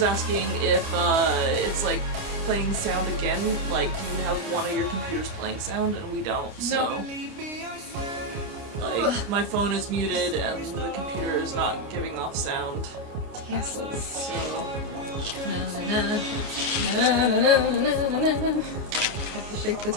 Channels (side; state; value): left; late; 29 ms